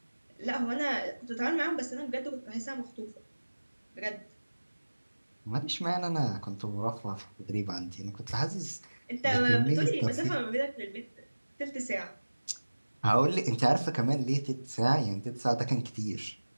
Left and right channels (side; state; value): both; inverted; correlation -1.00